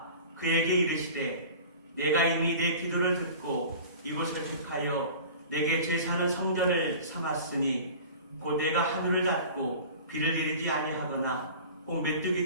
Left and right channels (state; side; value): inverted; both; correlation -0.40